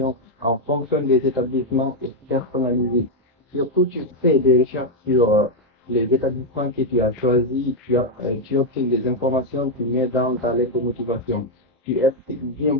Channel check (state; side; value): normal; both; correlation 0.01